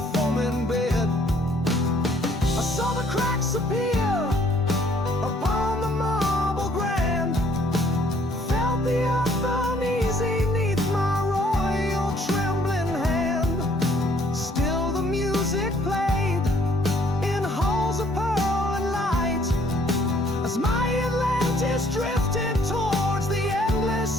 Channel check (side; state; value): both; normal; correlation 0.62